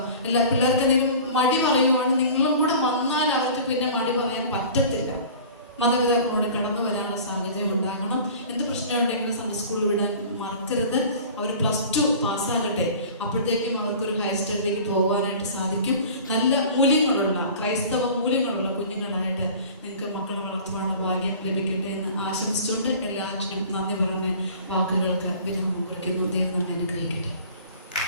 എല്ലാ പിള്ളേർക്ക് എന്തെങ്കിലും മടി പറയുവാണ്, നിങ്ങളും കൂടെ വന്നാൽ അവർക്ക് പിന്നെ മടി പറയാൻ പറ്റത്തില്ല. മാതാപിതാക്കളോട് കടന്നു വരാനുള്ള സാഹചര്യം ഉണ്ടാകണം. എന്ത് പ്രശ്നമുണ്ടെങ്കിലും സൺഡേ സ്കൂൾ വിടാൻ മറക്കരുത്. അവർ +2 പാസ്സാകട്ടെ, അപ്പോഴത്തേക്കും അവർക്കൊരു ഹയർ സ്റ്റഡിയിലേക്ക് പോകാനായിട്ട് സാധിക്കും. നല്ല മൂല്യങ്ങളുള്ള, ക്രൈസ്തവ മൂല്യങ്ങളുള്ള കുഞ്ഞുങ്ങളായിട്ട് നിങ്ങൾക്ക് മക്കളെ വളർത്തുവാനുള്ള ഭാഗ്യം ലഭിക്കട്ടെ എന്ന് ആശംസിച്ചുകൊണ്ട് എല്ലാറ്റിനും നന്ദി പറഞ്ഞ് വാക്കുകൾക്ക് വിരാമം കുറിക്കുന്നു. ദൈവം നമ്മെ അനുഗ്രഹിക്കട്ടെ.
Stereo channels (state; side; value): inverted; both; correlation -0.42